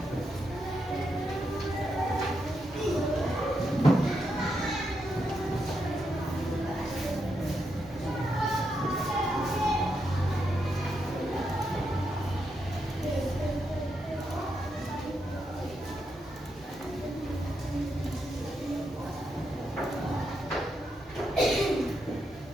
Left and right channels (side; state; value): both; normal; correlation 0.82